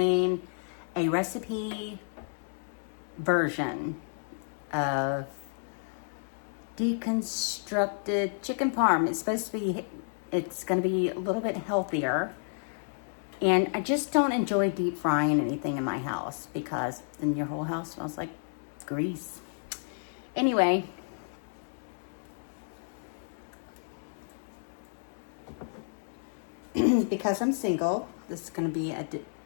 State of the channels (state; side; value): silent; right; digital silence